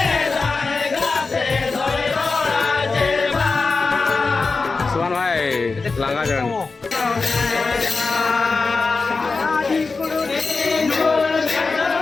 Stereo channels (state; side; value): quieter; right; 4.2 dB